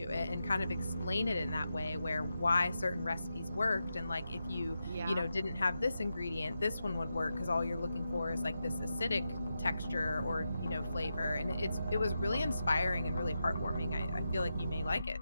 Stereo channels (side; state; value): both; inverted; correlation -0.88